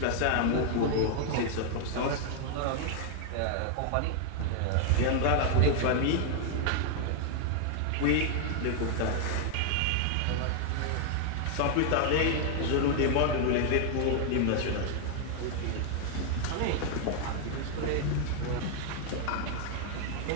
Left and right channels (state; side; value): different; both; correlation 0.00